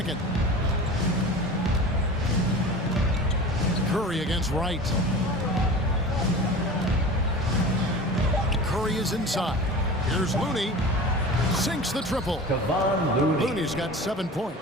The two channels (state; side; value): normal; both; correlation 0.35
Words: Curry against Wright. Curry is inside. Here's Looney. Sinks the triple. Looney's got 7